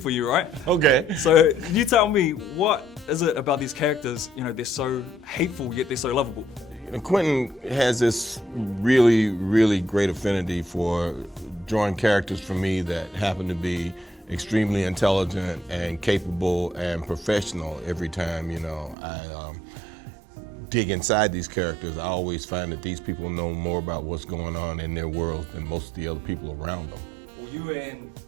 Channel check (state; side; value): drops out; left; at 18.9 s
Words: you, right? Okay. So you tell me, what is it about these characters, you know, they're so hateful, yet they're so lovable? And Quentin has this really, really great affinity for drawing characters for me that happen to be extremely intelligent and capable and professional every time, you know, I dig inside these characters. I always find that these people know more about what's going on in their world than most of the other people around them. Well, you and